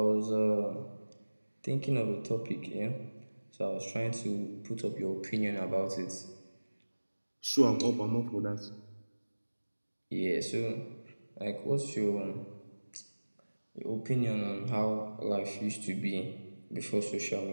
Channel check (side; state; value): both; inverted; correlation -1.00